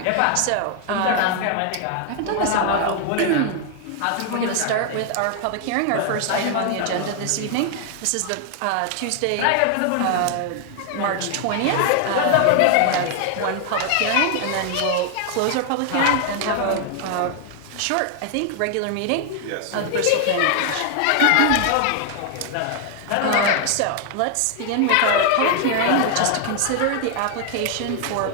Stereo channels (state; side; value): different; both; correlation 0.00